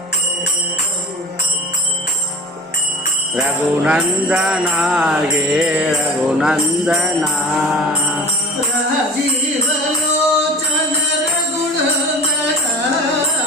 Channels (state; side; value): normal; both; correlation 0.39